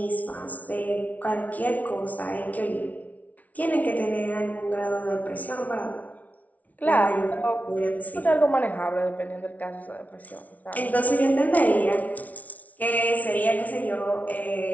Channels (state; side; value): late; right; 0.072 ms